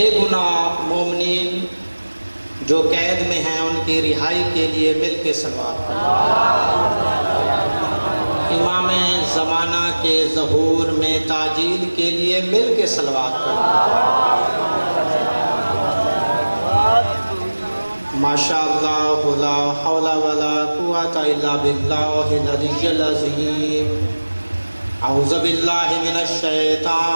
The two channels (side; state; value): both; inverted; correlation -1.00